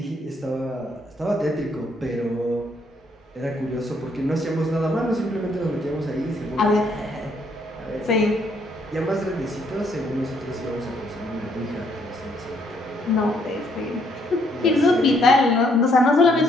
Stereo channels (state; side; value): normal; both; correlation 0.69